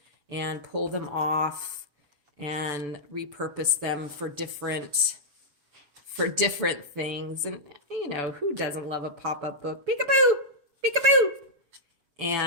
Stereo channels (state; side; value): late; left; 6.9 ms